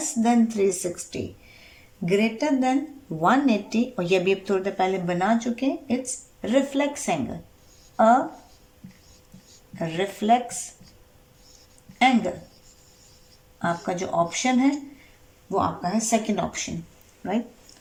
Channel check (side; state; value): both; identical; correlation 1.00